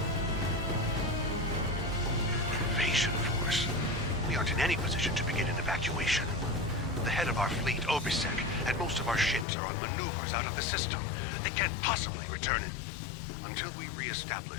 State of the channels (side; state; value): right; drops out; at 9.5 s